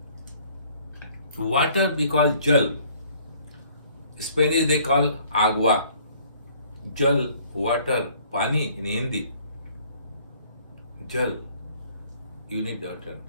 Water we call jal. Spanish they call agua. Jal, water, pani in Hindi. Jal, you need water.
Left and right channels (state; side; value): inverted; both; correlation -0.58